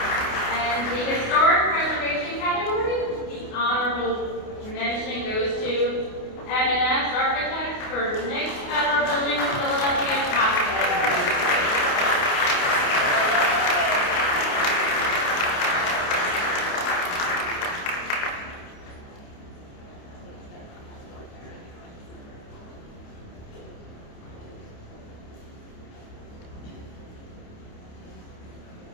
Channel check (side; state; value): right; late; 28 ms